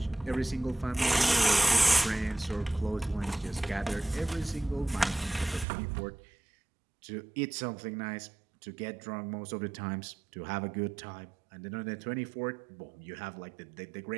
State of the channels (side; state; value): left; drops out; at 5.7 s